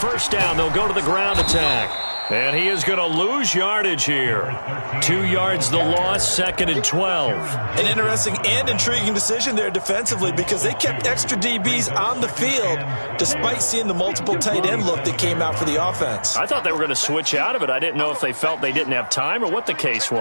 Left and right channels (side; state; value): both; inverted; correlation -1.00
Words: down, they'll go to the ground attack. And he is going to lose yardage here. 2 yards the loss, 2nd and 12. An interesting and intriguing decision there defensively because they kept extra DBs on the field despite seeing the multiple tight end look that came out for the offense. I thought they were going to switch out of it. I didn't know if they felt they didn't have time or what the case